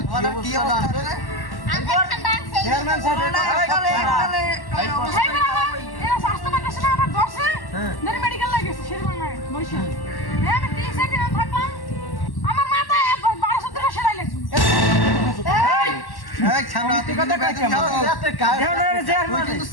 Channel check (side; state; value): right; late; 1.1 ms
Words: কি অবস্থা রে চেয়ারম্যান সাহেব মেডিকেল লাগেছে আমি 3 দিন থাকলাম আমার মাথায় 1200 টাকা সেলাই লাগছে এই ছামড়া তুই কথা কই কেমন তুই কিন্তু